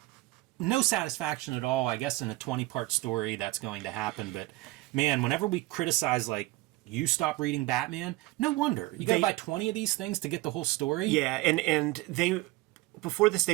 No satisfaction at all, I guess, in a 20-part story that's going to happen. But, man, whenever we criticize, like, you stop reading Batman, no wonder. You got to buy 20 of these things to get the whole story? Yeah, and they... Before this,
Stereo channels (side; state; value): left; quieter; 19.8 dB